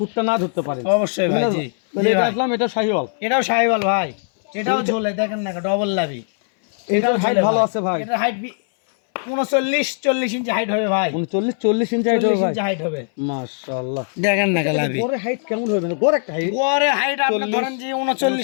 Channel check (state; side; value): silent; right; 60 dB below the other